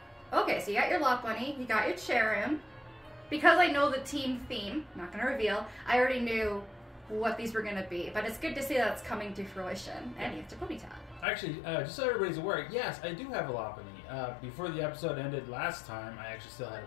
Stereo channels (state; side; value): drops out; right; at 11.2 s